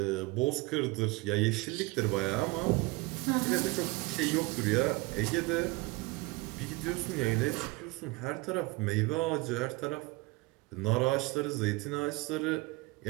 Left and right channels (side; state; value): left; quieter; 23.3 dB